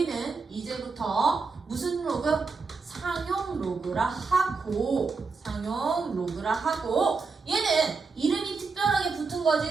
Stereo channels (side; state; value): left; quieter; 4.5 dB